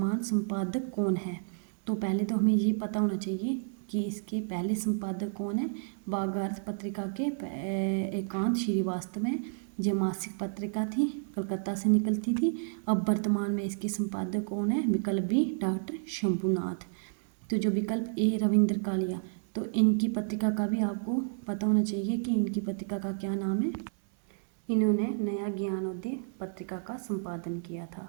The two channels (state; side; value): silent; left; 57 dB below the other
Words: संपादक कौन है? तो पहले तो हमें ये पता होना चाहिए कि इसके पहले संपादक कौन है। भागार्थ पत्रिका के एकांत श्रीवास्तव हैं। यह मासिक पत्रिका थी, कलकत्ता से निकलती थी। अब वर्तमान में इसके संपादक कौन है? विकल्प बी डॉक्टर शंभुनाथ। तो जो विकल्प ए रविंद्र कालिया, तो इनकी पत्रिका का भी आपको पता होना चाहिए कि इनकी पत्रिका का क्या नाम है। इन्होंने नया ज्ञानोदय पत्रिका का संपादन किया